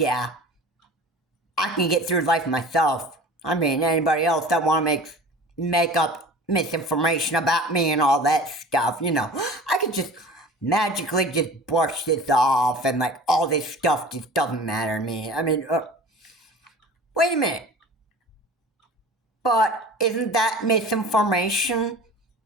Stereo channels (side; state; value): both; normal; correlation 0.41